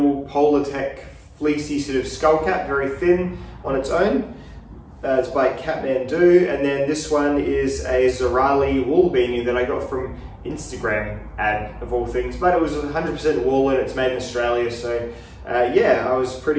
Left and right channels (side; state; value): both; identical; correlation 1.00